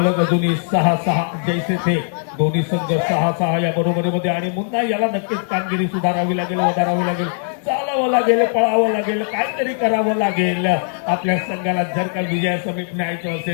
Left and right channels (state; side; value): silent; right; 66 dB below the other